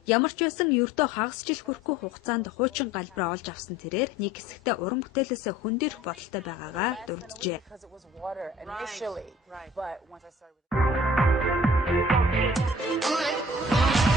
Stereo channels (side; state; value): both; normal; correlation 0.50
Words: Ямар ч байсан ердөө хагас жил хүрэхгүй хугацаанд хуучин галбраа олж авсан тэрээр нэг хэсэгтээ уран бүтээлээсээ хөндөрөх бодолтой байгаагаа дурджээ.